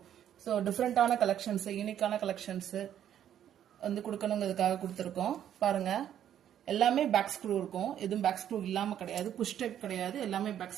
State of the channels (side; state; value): left; quieter; 10.4 dB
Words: ஸோ டிஃப்ரெண்டான கலெக்ஷன்ஸ் யூனிக்கான கலெக்ஷன்ஸ் வந்து கொடுக்கணுங்கிறதுக்காக கொடுத்துருக்கோம். பாருங்க எல்லாமே பேக் ஸ்க்ரூ இருக்கும். எதுவும் பேக் ஸ்க்ரூ இல்லாம கிடையாது. புஷ் டைப் கிடையாது. எல்லாமே பேக்